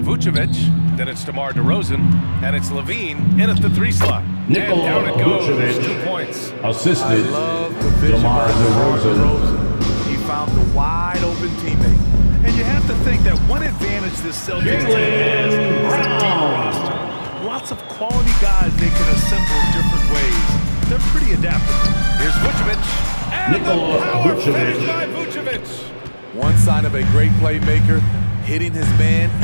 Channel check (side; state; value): both; inverted; correlation -1.00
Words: Vucevic. Then it's DeMar DeRozan. And it's Levine in at the 3 slot. Nikola and down it goes. Vucevic. 2 points. Assisted. I love the vision DeMar by DeRozan. He found the wide open teammate. And you have to think that one advantage this Celtics team has is a deep roster. Lots of quality guys they can assemble different ways. They're pretty adaptable. Here's Vucevic. And Nikola the power Vucevic. finish by Vucevic. One sign of a great playmaker, hitting his man